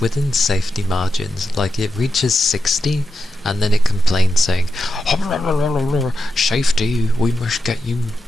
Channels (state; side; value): normal; both; correlation 0.89